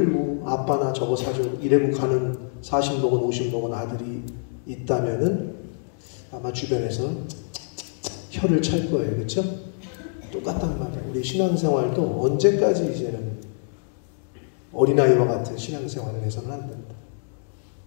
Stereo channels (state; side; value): silent; right; digital silence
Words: 아빠나 저거 사줘 이래고 가는 40 먹은 50 먹은 아들이 있다면은 아마 주변에서 혀를 찰 거예요. 그렇죠? 똑같단 말이에요. 우리 신앙생활도 언제까지 이제는 어린아이와 같은 신앙생활을 해서는 안 된다.